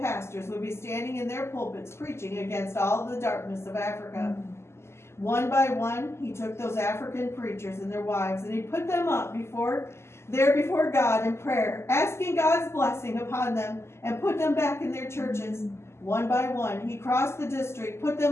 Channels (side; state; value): right; late; 0.13 ms